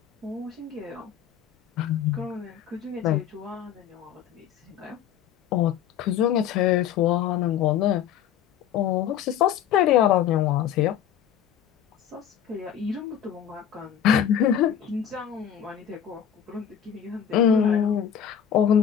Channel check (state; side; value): quieter; right; 9.3 dB